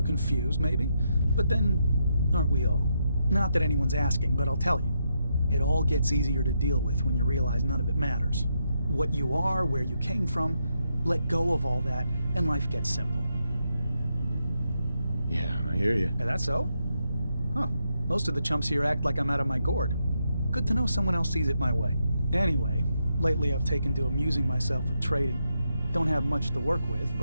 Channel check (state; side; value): inverted; both; correlation -0.82